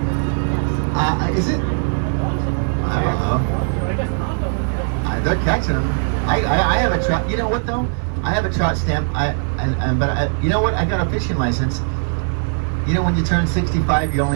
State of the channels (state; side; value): silent; left; 55 dB below the other